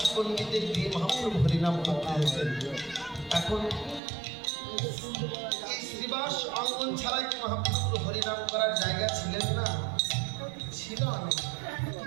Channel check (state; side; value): drops out; left; at 4.0 s